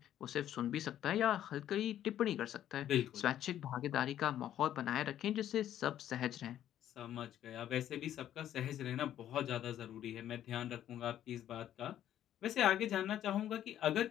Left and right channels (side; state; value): right; quieter; 11.4 dB